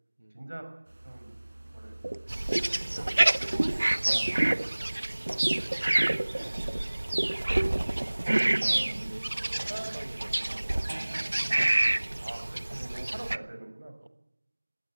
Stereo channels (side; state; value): both; inverted; correlation -1.00